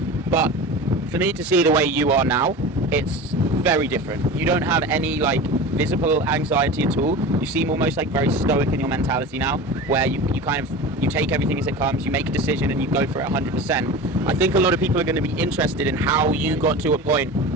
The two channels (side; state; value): both; normal; correlation 0.32